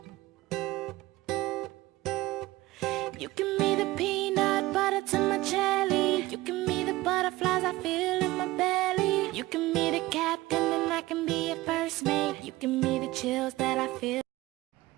You give me the peanut butter to my jelly. You give me the butterflies I feel in my belly. You give me the captain and I can be your first mate. You give me the chills that I feel.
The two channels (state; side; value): quieter; left; 18.7 dB